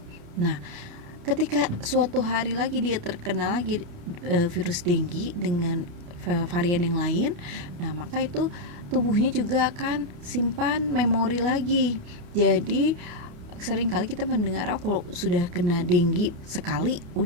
Nah, ketika suatu hari lagi dia terkena lagi virus dengue dengan varian yang lain, nah maka itu tubuhnya juga akan simpan memori lagi. Jadi sering kali kita mendengar kalau sudah kena dengue sekali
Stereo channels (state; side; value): late; left; 29 ms